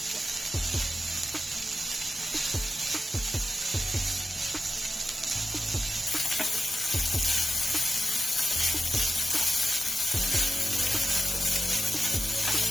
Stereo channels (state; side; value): normal; both; correlation 0.91